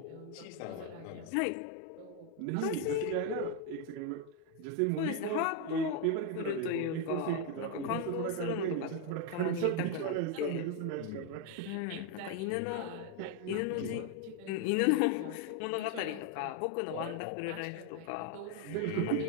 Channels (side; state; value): both; different; correlation 0.01